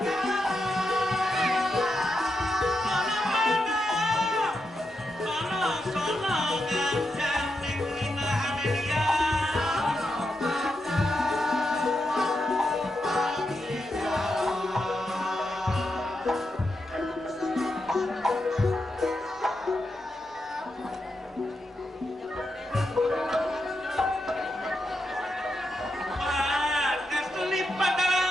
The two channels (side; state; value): both; normal; correlation 0.85